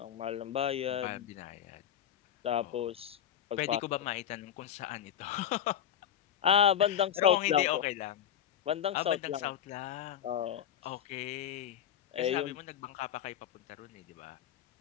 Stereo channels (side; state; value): right; quieter; 10.0 dB